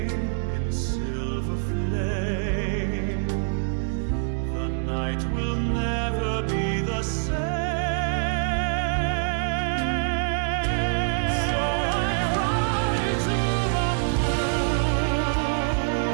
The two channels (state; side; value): silent; left; digital silence